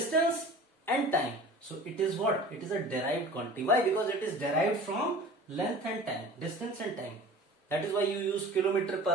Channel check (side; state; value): both; normal; correlation 0.41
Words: and time. So it is what? It is a derived quantity. Why? Because it is derived from length and time, distance and time. That is why you use kilometer per